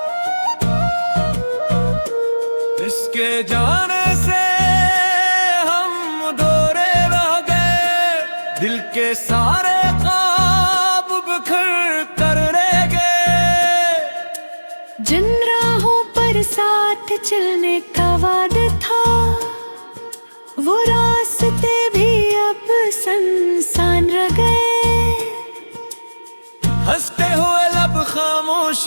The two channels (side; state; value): both; inverted; correlation -1.00